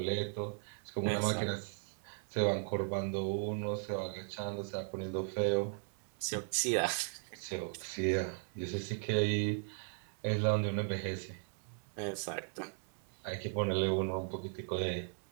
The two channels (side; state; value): left; silent; 53 dB below the other